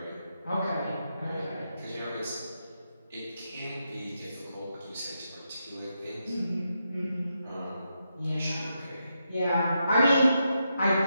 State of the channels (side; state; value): both; inverted; correlation -0.84